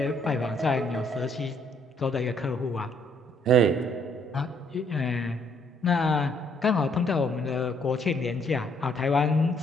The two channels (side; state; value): both; normal; correlation 0.67